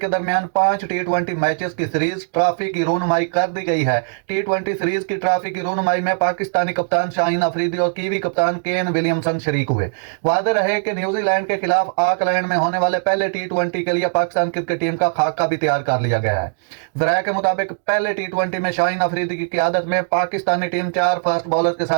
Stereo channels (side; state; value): left; silent; digital silence